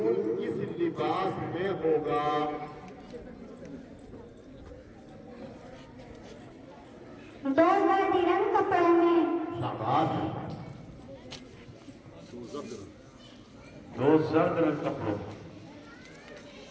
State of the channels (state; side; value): identical; both; correlation 1.00